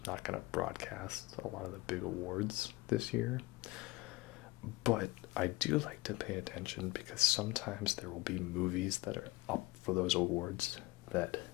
not going to broadcast a lot of the big awards this year. But I do like to pay attention, because sometimes there will be movies that are up for those awards that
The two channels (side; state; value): right; quieter; 21.0 dB